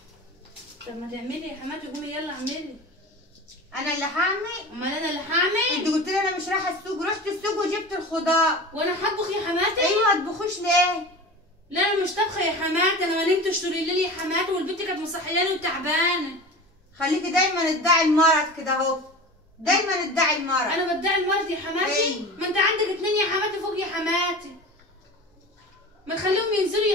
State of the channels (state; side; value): normal; both; correlation 0.33